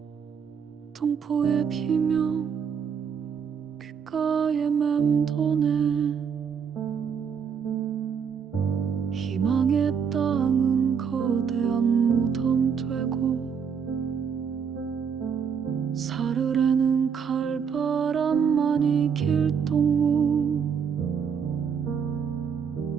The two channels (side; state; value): left; quieter; 6.9 dB